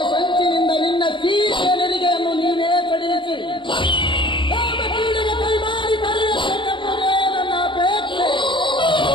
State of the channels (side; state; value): right; late; 0.23 ms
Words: ಸಂಚಿನಿಂದ ನಿನ್ನ ಸೀಟೆ ನೆರಿಗೆಯನ್ನು ನೀವೇ ಕಡಿಯಿಸಿ ಕಾಮಕೀಡಿಗೆ ಕೈ ಮಾಡಿ ಕರೆಯಬೇಕೆಂಬುದೇ ನನ್ನ ಅಪೇಕ್ಷೆ.